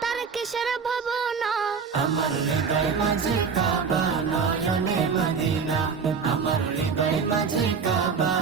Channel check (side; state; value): left; quieter; 5.8 dB